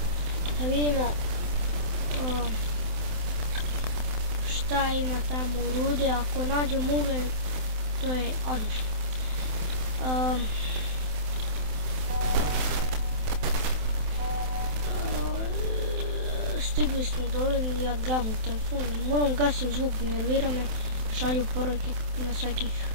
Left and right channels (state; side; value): late; left; 27 ms